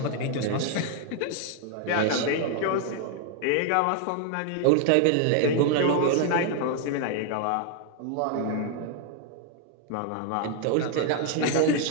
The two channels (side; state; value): both; different; correlation 0.00